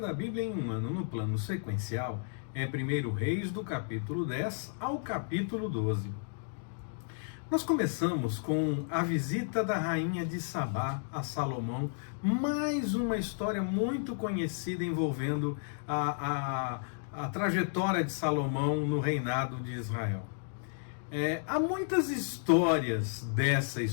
Bíblia em um ano no plano sequencial, é 1 Reis do capítulo 10 ao capítulo 12. Nós começamos com a visita da rainha de Sabá a Salomão, mais uma história muito conhecida envolvendo a trajetória de Salomão no reinado de Israel. Há muitas histórias dessa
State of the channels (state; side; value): silent; right; digital silence